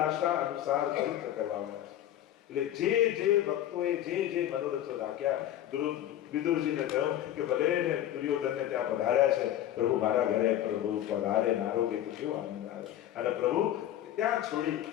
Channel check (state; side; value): quieter; right; 12.1 dB